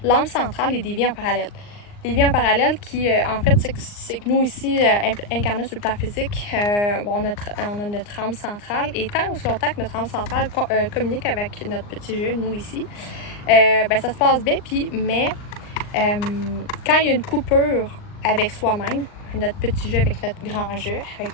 l'âme centrale et des vies en parallèle. Les vies en parallèle qui, en fait, c'est que nous ici, incarnés sur le plan physique, on a notre âme centrale. Et tant aussi longtemps que notre âme centrale communique avec notre petit jeu, nous ici, ça se passe bien. Mais quand il y a une coupure avec soi-même, notre petit jeu avec notre grand jeu,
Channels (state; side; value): late; right; 39 ms